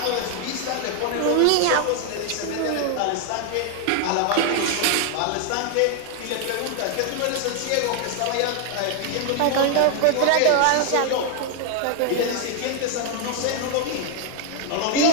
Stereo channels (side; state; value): both; different; correlation 0.00